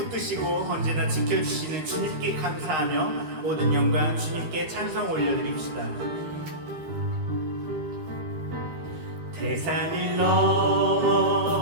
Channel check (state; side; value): late; left; 13 ms